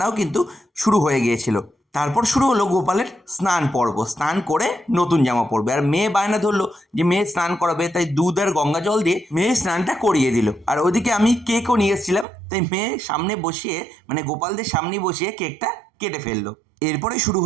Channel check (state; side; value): drops out; left; at 12.2 s